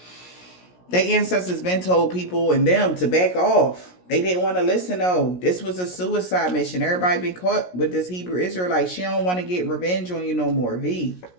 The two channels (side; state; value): right; late; 17 ms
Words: their ancestors been told people and them to back off. They didn't want to listen, though. This was a suicide mission. Everybody been caught with this Hebrew Israelite. She don't want to get revenge on you no more. V.